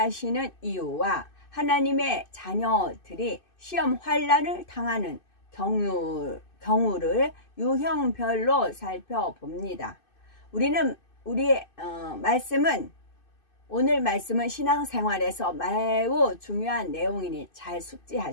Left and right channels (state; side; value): late; right; 2.6 ms